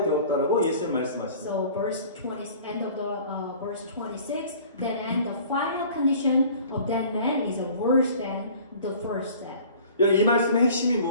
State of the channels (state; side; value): inverted; both; correlation -0.47